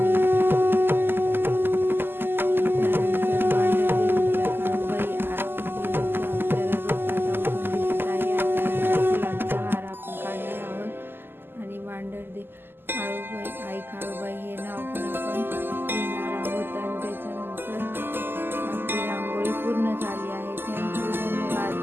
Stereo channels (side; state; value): left; late; 0.10 ms